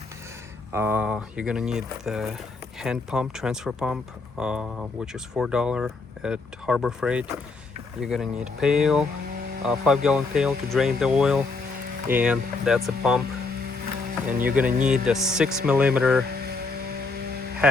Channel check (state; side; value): quieter; right; 3.9 dB